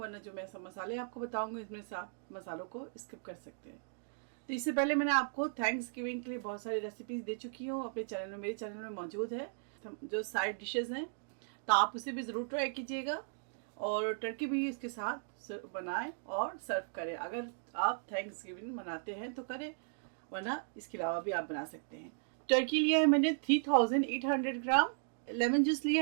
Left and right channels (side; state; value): left; silent; digital silence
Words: जो मैं सब मसाले आपको बताऊंगी इसमें से आप मसालों को स्किप कर सकते हैं। तो इससे पहले मैंने आपको थैंक्स गिविंग के लिए बहुत सारी रेसिपीज़ दे चुकी हूँ अपने चैनल में, मेरे चैनल में मौजूद है जो साइड डिशेज़ हैं, तो आप उसे भी ज़रूर ट्राई कीजिएगा और टर्की भी इसके साथ बनाएं और सर्व करें। अगर आप थैंक्स गिविंग मनाते हैं तो करें, वरना इसके अलावा भी आप बना सकते हैं। टर्की लिया है मैंने 3800 ग्राम, लेमन जूस लिया